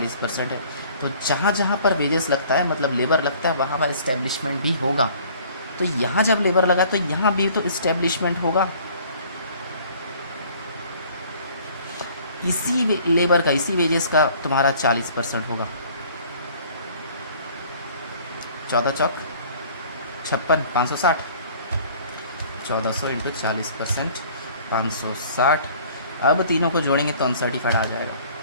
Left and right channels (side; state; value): both; inverted; correlation -0.52